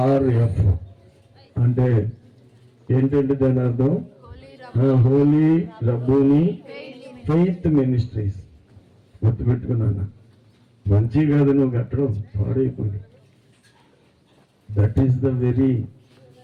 అంటే ఏంటంటే దాని అర్థం హోలీ రబ్బూని ఫెయిత్ మినిస్ట్రీస్. గుర్తుపెట్టుకున్నాను. మంచి కాదు నువ్వు కట్టడం, పాడైపోయి. That is the very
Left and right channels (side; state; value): both; identical; correlation 1.00